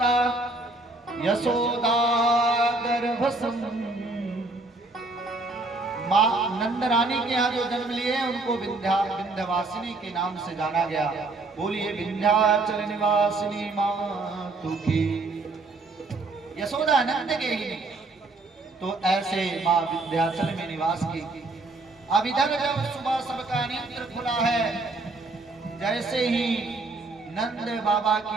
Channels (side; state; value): left; quieter; 3.2 dB